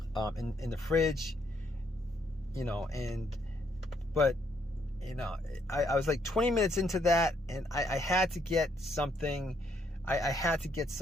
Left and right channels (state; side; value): normal; both; correlation 0.72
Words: in the fridge, you know. But you know, I was like 20 minutes into that, and I had to get something. I had to get